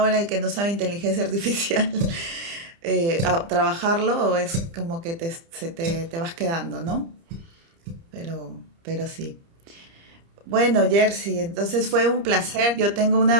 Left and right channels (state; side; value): late; left; 30 ms